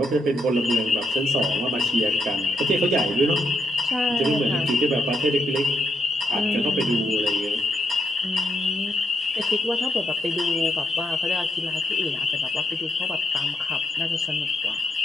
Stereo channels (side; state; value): both; normal; correlation 0.79